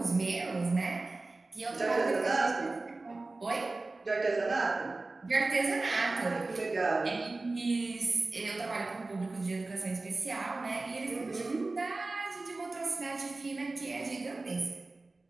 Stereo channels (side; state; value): left; quieter; 3.3 dB